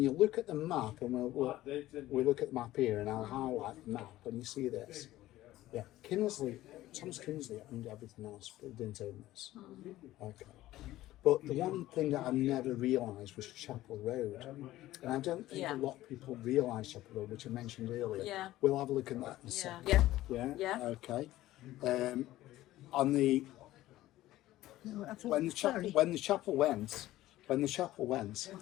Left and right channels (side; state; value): right; quieter; 15.6 dB